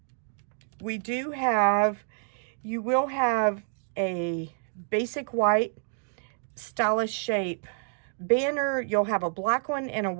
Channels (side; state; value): left; silent; 59 dB below the other